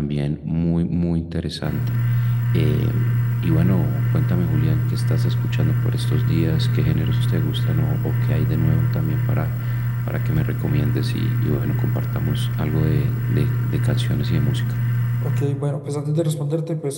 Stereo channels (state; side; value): identical; both; correlation 1.00